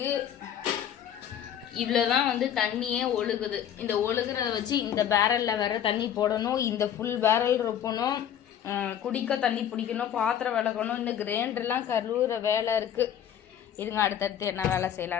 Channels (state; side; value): quieter; right; 9.7 dB